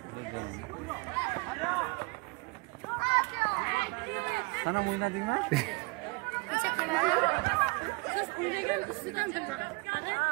Sana mı oynadın mı?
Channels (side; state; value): left; quieter; 27.6 dB